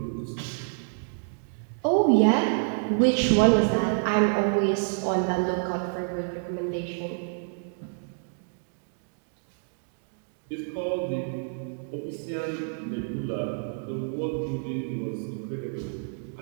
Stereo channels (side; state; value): left; silent; digital silence